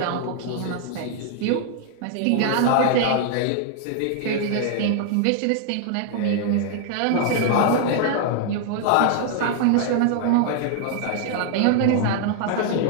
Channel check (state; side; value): different; both; correlation 0.00